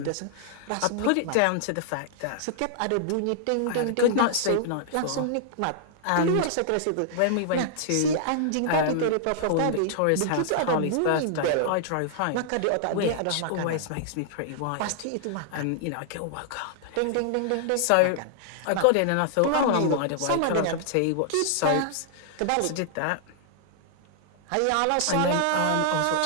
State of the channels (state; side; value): different; both; correlation -0.01